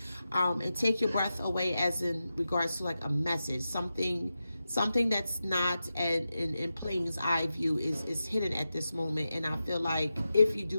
and take your breath away as in regards to like a message, something that's not in plain eye view is hidden at this moment. And I feel like if you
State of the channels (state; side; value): inverted; both; correlation -0.91